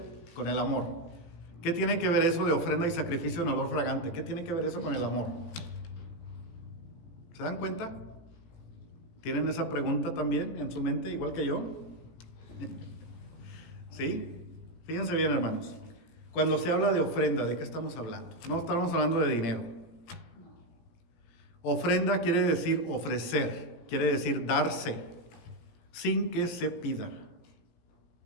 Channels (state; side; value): late; right; 18 ms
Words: con el amor? ¿Qué tiene que ver eso de ofrenda y sacrificio en olor fragante? ¿Qué tiene que ver eso con el amor? ¿Se dan cuenta? ¿Tienen esa pregunta también en su mente, igual que yo? ¿Sí? Fíjense bien, hermanos. Cuando se habla de ofrenda, ¿de qué estamos hablando? No estamos hablando de dinero. Ofrenda quiere decir ofrecer, quiere decir darse, sin que se pida.